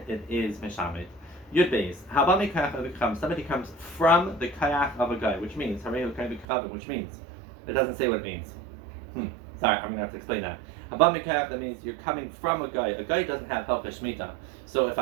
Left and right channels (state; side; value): drops out; left; at 6.5 s